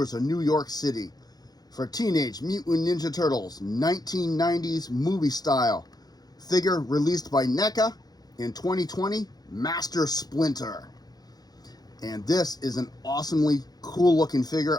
of New York City for Teenage Mutant Ninja Turtles 1990s movie style figure released by NECA in 2020, Master Splinter. And this is an awesomely cool looking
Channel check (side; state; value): right; late; 0.19 ms